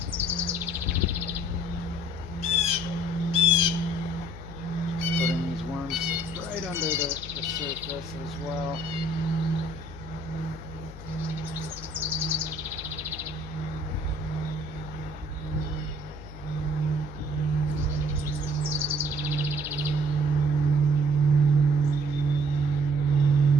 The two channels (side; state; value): left; noise; hum, 14 dB below the sound